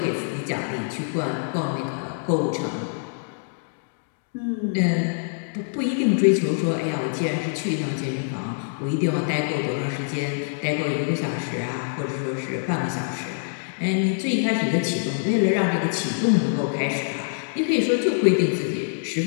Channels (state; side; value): silent; right; digital silence